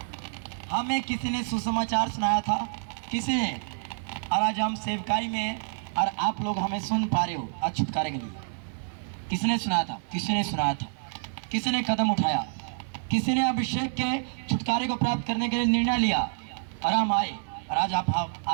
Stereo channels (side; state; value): left; silent; 59 dB below the other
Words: हमें किसी ने सुसमाचार सुनाया था, किसी ने, और आज हम सेवकाई में हैं और आप लोग हमें सुन पा रहे हो आज छुटकारे के लिए। किसने सुनाया था? किसी ने सुनाया था, किसी ने कदम उठाया, किसी ने अभिषेक के छुटकारे को प्राप्त करने के लिए निर्णय लिया और हम आए। और आज